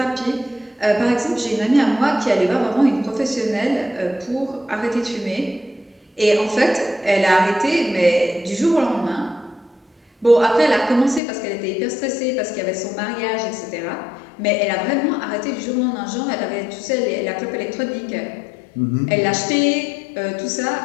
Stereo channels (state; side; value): drops out; right; at 11.2 s